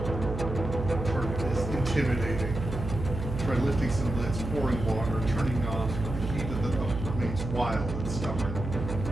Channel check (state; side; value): noise; right; hum, 6 dB below the sound